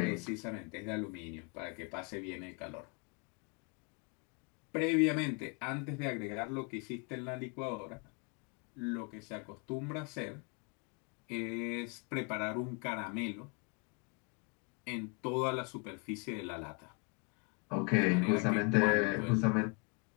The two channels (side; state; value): right; quieter; 31.0 dB